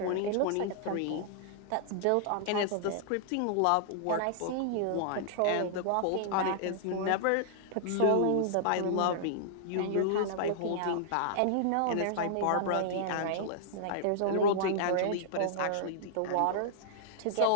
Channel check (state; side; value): different; both; correlation -0.01